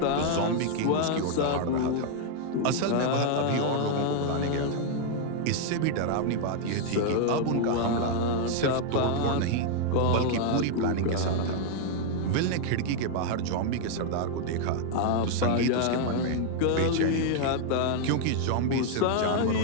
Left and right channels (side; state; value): both; different; correlation 0.00